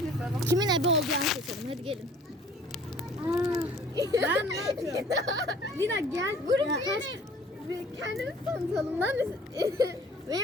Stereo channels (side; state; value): both; normal; correlation 0.52